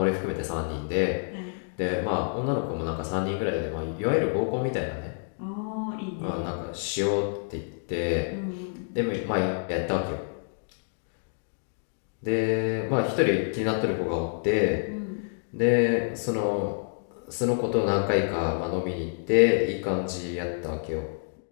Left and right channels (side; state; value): right; silent; digital silence